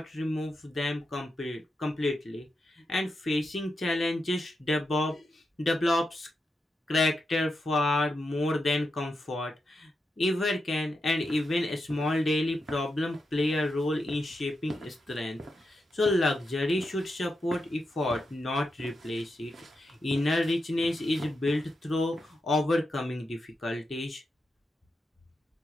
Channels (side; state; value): both; normal; correlation 0.86